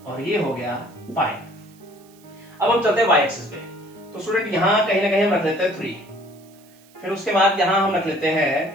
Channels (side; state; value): right; noise; hiss, 28 dB below the sound